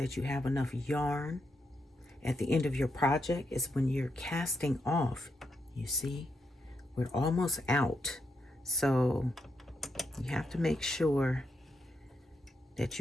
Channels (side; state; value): both; normal; correlation 0.81